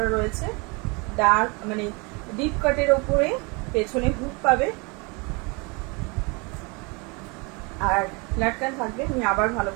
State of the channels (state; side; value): quieter; left; 29.4 dB